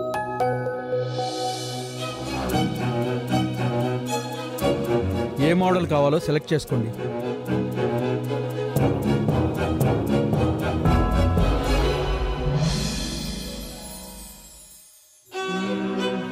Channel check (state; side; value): identical; both; correlation 1.00